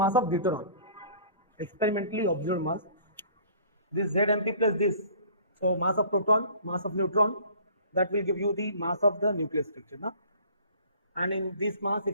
of deuteron, experimentally observed mass. This ZMP plus this, so mass of proton, mass of neutron, that will give you the mass of the nucleus structure, na? And in this mass,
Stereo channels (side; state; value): both; inverted; correlation -0.49